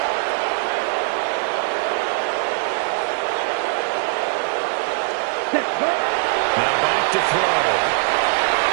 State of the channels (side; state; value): left; silent; digital silence